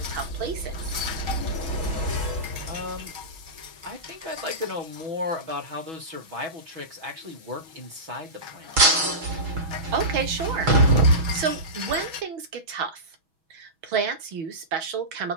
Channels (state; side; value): late; left; 6.2 ms